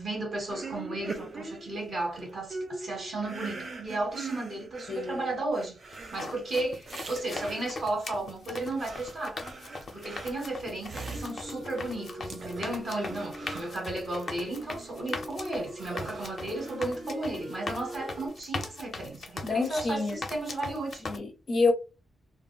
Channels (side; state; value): both; normal; correlation 0.83